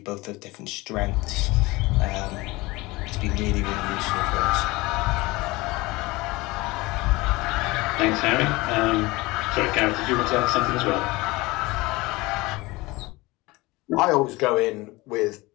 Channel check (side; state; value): right; quieter; 21.8 dB